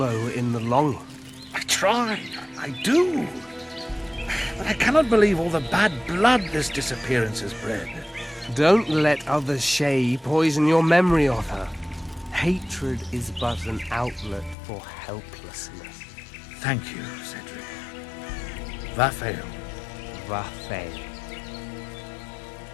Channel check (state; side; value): drops out; right; at 14.6 s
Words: in the longing. I try. I do. But I cannot believe all the bad blood this disappearance has bred. Don't let other Shay poison your memory of her. Hatred is but an outlet for helplessness. Thank you, Cedric. Vafael. Vafael.